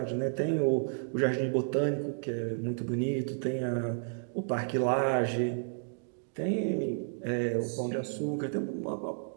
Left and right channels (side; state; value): left; silent; digital silence